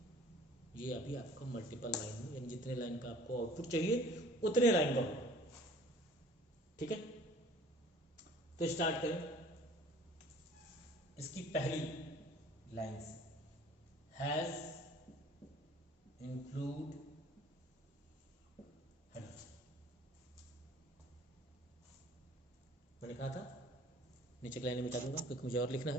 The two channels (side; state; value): both; normal; correlation 0.51